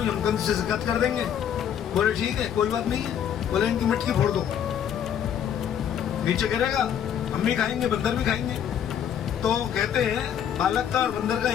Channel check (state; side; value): quieter; right; 9.1 dB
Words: हम कंस से शिकायत कर देंगे। बोले ठीक है कोई बात नहीं है। बोले इनकी मटकी फोड़ दो, नीचे गिरेगा, हम भी खाएंगे, बंदर भी खाएंगे। तो कहते हैं बालक का और बंदर का